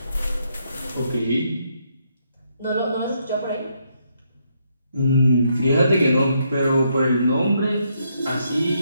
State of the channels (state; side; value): inverted; both; correlation -0.76